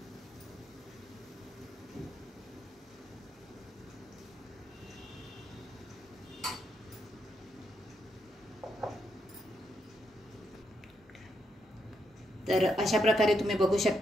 तर अशा प्रकारे तुम्ही बघू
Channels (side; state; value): both; normal; correlation 0.80